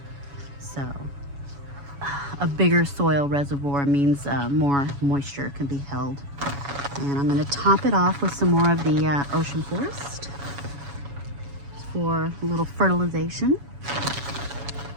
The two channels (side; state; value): left; late; 7.1 ms